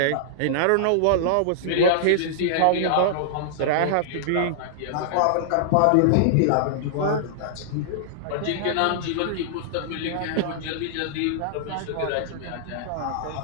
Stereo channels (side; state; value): both; different; correlation -0.01